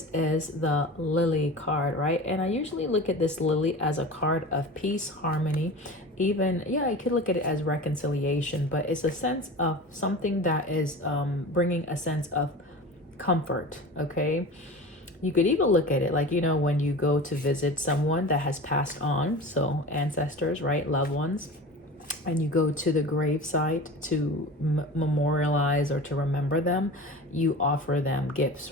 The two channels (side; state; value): both; normal; correlation 0.34